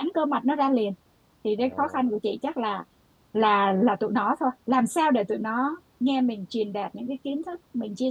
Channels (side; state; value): both; identical; correlation 1.00